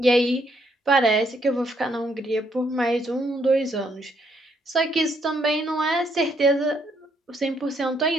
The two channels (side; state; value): both; normal; correlation 0.72